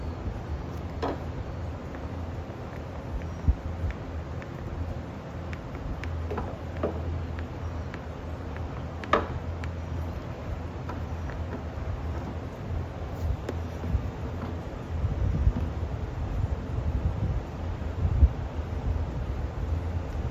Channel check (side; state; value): both; identical; correlation 1.00